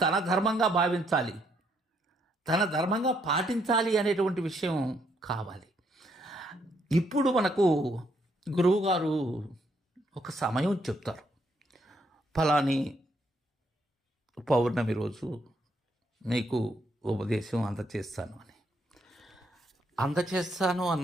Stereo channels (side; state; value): both; normal; correlation 0.73